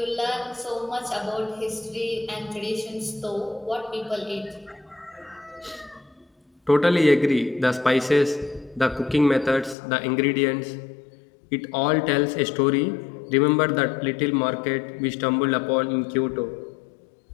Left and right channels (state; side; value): drops out; right; at 9.8 s